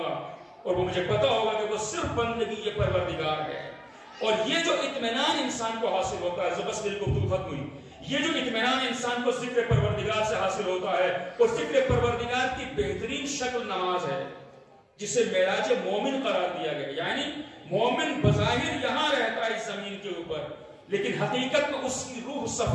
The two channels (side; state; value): both; identical; correlation 1.00